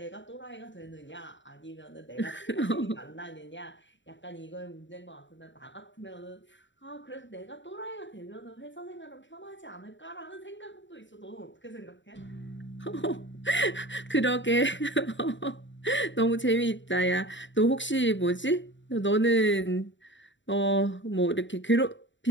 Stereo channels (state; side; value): late; right; 0.54 ms